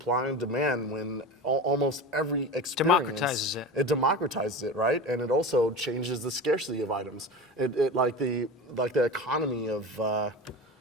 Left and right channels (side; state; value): both; normal; correlation 0.29